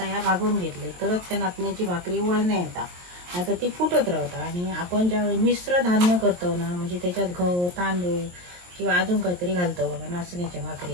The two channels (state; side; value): late; left; 23 ms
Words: ह्या भागवून घेतले तरच त्या नाचण्याची भाकरी वळण्या येतात. आता ती फुटत राहतात. आणि आपण ज्यावेळी मिश्र धान्य करतो ना, म्हणजे त्याच्यात गहू तांदूळ किंवा अजून काहीतरी घालतो बघा नाचण्याच्या